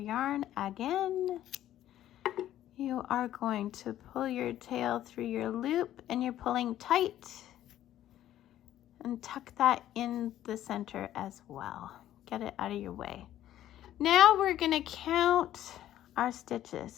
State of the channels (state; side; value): quieter; right; 12.5 dB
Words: again. You are going to pull your tail through your loop, and you're pulling tight, and tuck that in the center as well. Get it out of your way. Now we're going to count our stitches.